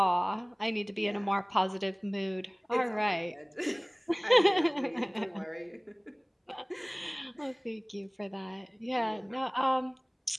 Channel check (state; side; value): identical; both; correlation 1.00